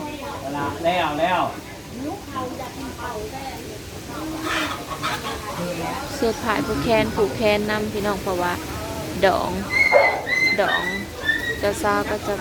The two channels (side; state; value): both; identical; correlation 1.00